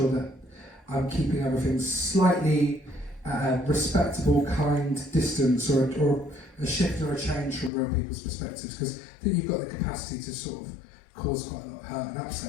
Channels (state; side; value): drops out; right; at 7.7 s